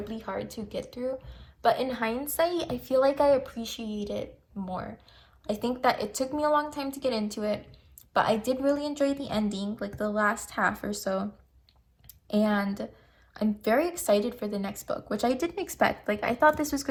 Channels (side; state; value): both; identical; correlation 1.00